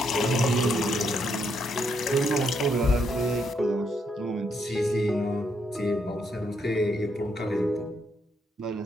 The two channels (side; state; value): both; normal; correlation 0.76